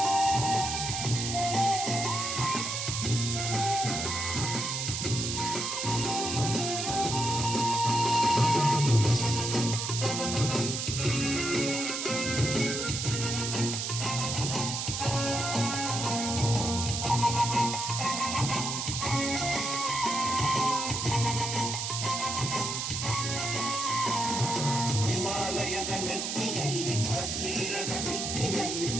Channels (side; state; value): right; noise; hiss, 2 dB below the sound